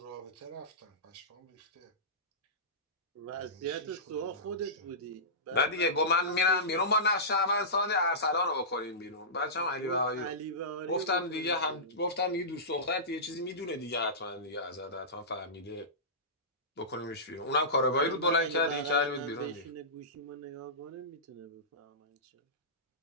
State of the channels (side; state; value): both; normal; correlation -0.20